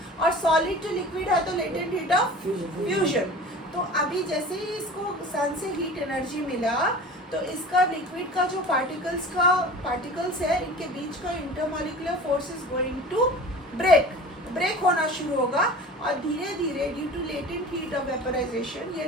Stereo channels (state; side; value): normal; both; correlation 0.39